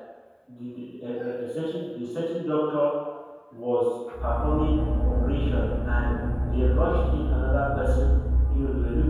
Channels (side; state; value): both; identical; correlation 1.00